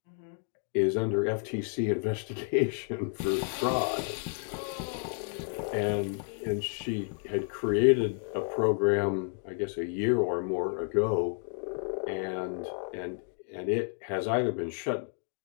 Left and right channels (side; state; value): right; silent; 57 dB below the other